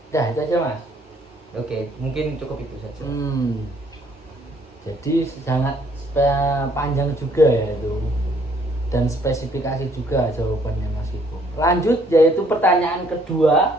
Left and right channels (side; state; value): both; normal; correlation 0.64